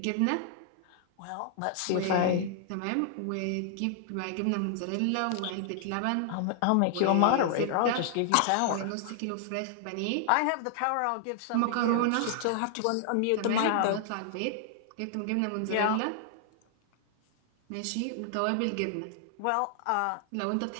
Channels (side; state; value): both; different; correlation -0.01